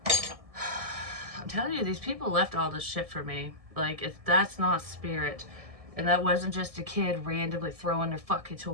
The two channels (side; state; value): left; late; 1.6 ms